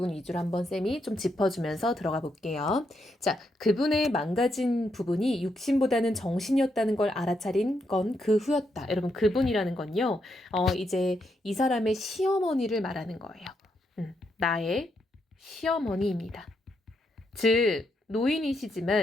위주로 한번 쌤이 좀 짚어주면서 들어가 볼게요. 자, 그분의 망가진 부분이 육신보다는 정신이었다는 걸 알아차린 건 그 후였다. 여러분, 그분이라는 건요. 이제 이 사람의 시어머니를 말하는 거예요. 나의 시어머니입니다. 즉,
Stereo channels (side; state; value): both; normal; correlation 0.79